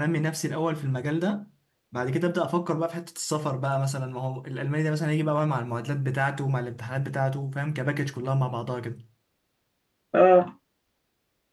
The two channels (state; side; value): identical; both; correlation 1.00